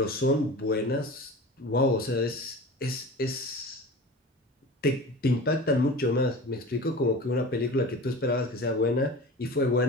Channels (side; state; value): both; normal; correlation 0.35